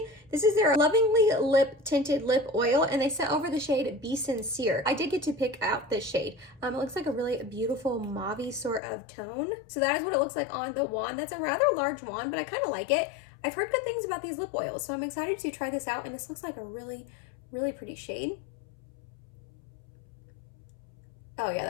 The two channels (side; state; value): right; drops out; at 8.8 s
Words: This is their Lovingly Lip Tinted Lip Oil, and they sent over the shade Be Sincere. I did get to pick out this shade. It looks like a really beautiful mauve-y sort of tone. So that is what it looks like on the wand. That's a rather large wand, but I kind of like it. I've heard good things about these lip oils, so I'm excited to try this out, and this looks like a really, really pretty shade. Oh yeah,